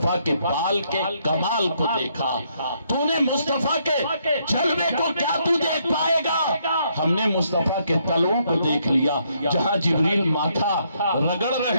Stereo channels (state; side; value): inverted; both; correlation -0.73